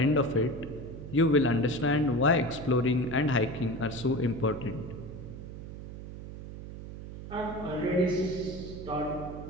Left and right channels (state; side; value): noise; right; hum, 11 dB below the sound